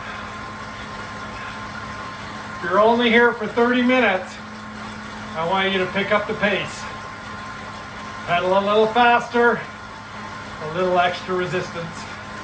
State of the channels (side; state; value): both; identical; correlation 1.00